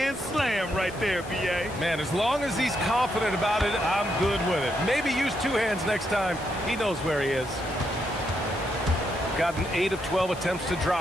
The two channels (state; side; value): noise; left; hiss, 19 dB below the sound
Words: slam right there, B.A. Man, as long as he's confident about it, I'm good with it. Maybe use 2 hands next time. He knows where he is. Gotten 8 of 12 attempts to